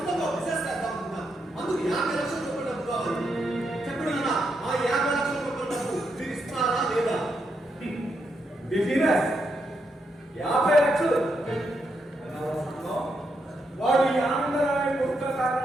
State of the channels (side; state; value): both; normal; correlation 0.81